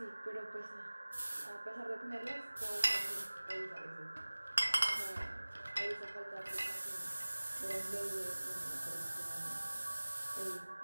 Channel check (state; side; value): inverted; both; correlation -1.00